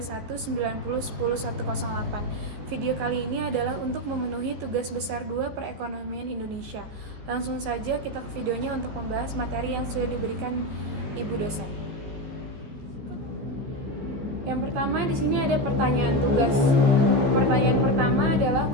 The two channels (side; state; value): left; late; 14 ms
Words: Video kali ini adalah untuk memenuhi tugas besar 2 perekonomian Indonesia. Langsung saja kita ke videonya untuk membahas materi yang sudah diberikan Ibu dosen. Yang pertama, di sini ada pertanyaan tugas. Pertanyaan pertama adalah